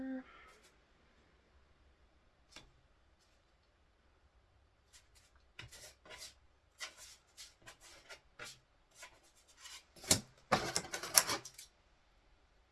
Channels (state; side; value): identical; both; correlation 1.00